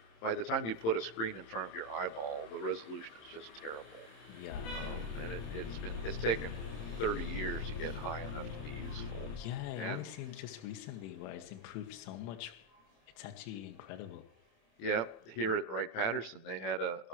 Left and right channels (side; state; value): right; late; 27 ms